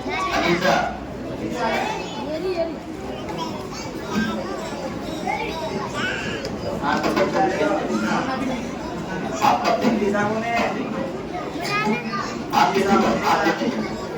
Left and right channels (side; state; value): both; identical; correlation 1.00